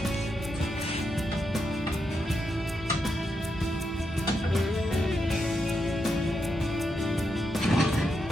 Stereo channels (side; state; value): both; normal; correlation 0.83